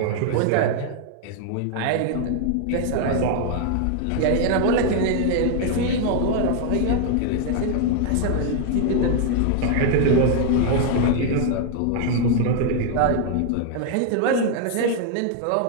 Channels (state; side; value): different; both; correlation 0.00